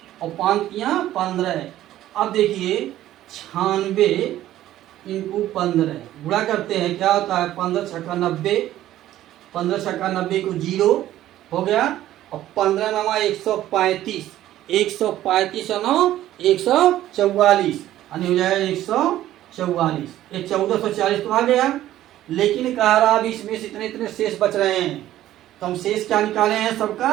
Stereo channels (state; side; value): quieter; left; 13.5 dB